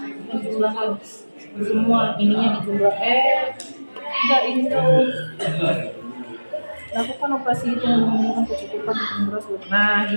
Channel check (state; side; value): inverted; both; correlation -1.00